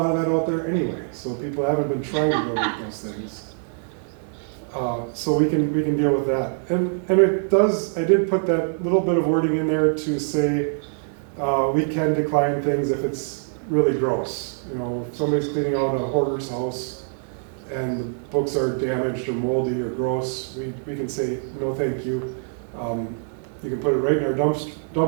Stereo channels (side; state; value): left; silent; digital silence